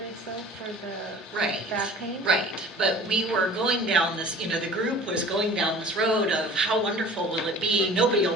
though, for the back pain? Right, but we were going down this, the group was going down this road of how wonderful will it be, nobody will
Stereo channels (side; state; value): both; normal; correlation 0.44